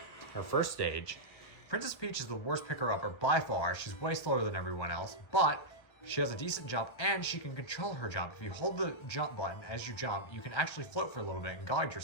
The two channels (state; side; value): late; right; 1.6 ms